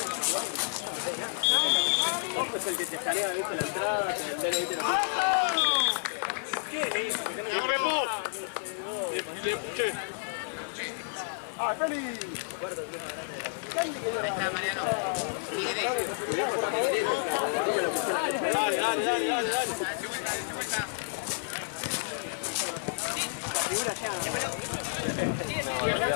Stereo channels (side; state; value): right; silent; 58 dB below the other